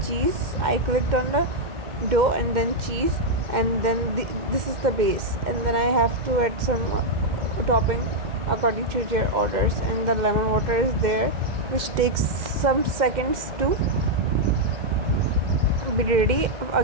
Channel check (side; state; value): left; late; 2.1 ms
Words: cheese. I clicked on the dough and then cheese, and then this is the base, and then I have to add some topping according to their orders, and the lemon water is there, which takes some seconds to be ready